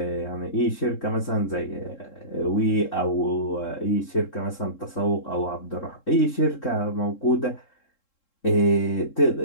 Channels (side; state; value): right; late; 3.7 ms